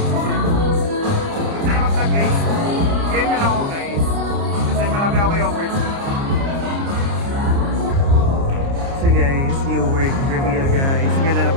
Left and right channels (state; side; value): late; left; 29 ms